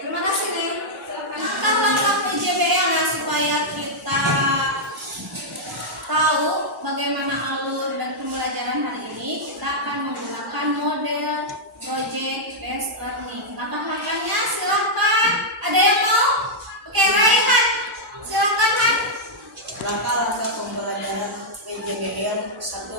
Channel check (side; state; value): both; normal; correlation -0.06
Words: terima kasih nih. Silakan langkah PJBL ya supaya kita tahu bagaimana alur dan pembelajaran hari ini. Kita akan menggunakan model project based learning. Langkah-langkahnya silahkan. Ada yang mau? Oke, Raihan. Silahkan, Han. Langkah-langkah pembelajaran PJBL: